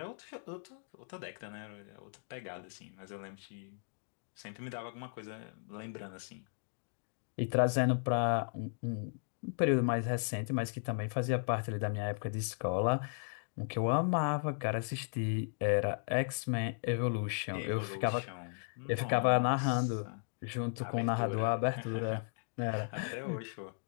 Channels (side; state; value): right; silent; digital silence